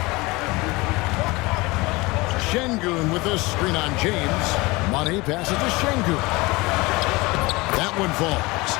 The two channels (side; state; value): right; quieter; 23.0 dB